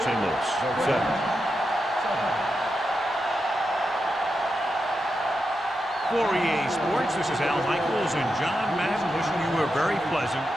St. Louis 7. For EA Sports, this is Al Michaels and John Madden wishing you a very pleasant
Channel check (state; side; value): normal; both; correlation 0.87